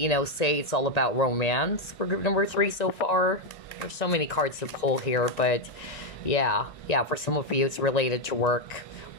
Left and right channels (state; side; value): late; right; 1.9 ms